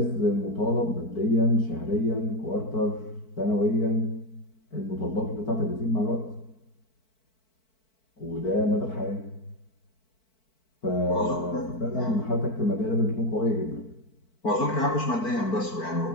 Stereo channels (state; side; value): late; right; 4.5 ms